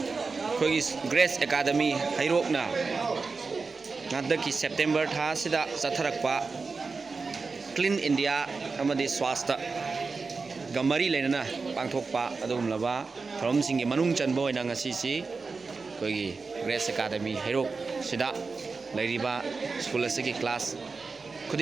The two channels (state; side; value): quieter; left; 4.4 dB